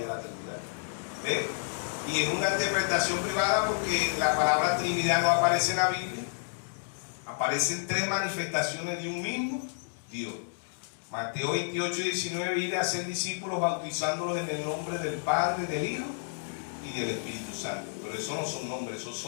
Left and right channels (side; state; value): right; silent; digital silence